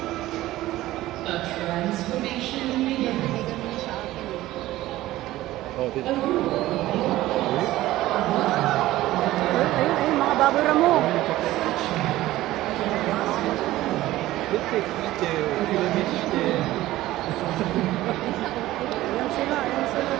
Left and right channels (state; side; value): quieter; left; 16.1 dB